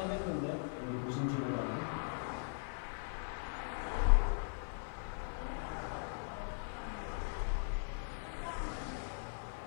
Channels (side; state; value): right; silent; digital silence